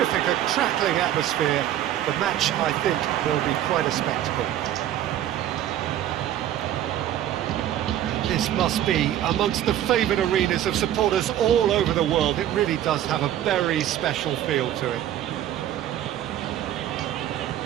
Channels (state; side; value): quieter; left; 11.9 dB